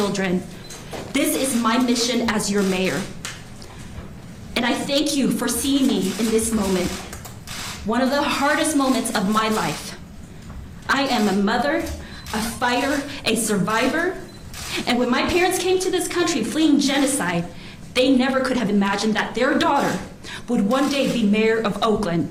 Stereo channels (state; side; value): identical; both; correlation 1.00